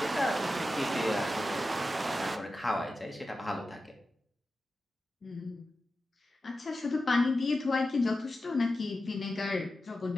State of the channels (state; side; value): normal; both; correlation 0.92